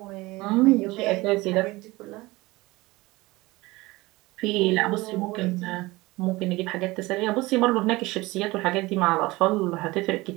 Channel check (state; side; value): quieter; left; 21.0 dB